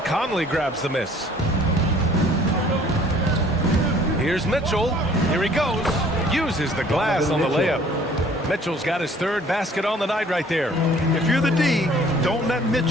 Conley grabs the miss. Here's Mitchell. Here he goes. Uses the glass on the layup. Mitchell's got his third basket on the night right there. If you're the D, don't let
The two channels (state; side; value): normal; both; correlation 0.55